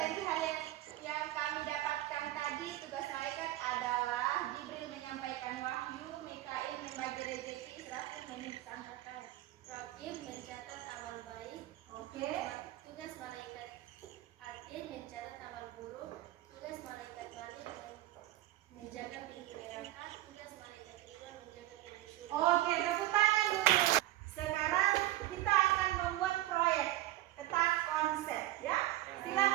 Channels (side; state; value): left; quieter; 15.5 dB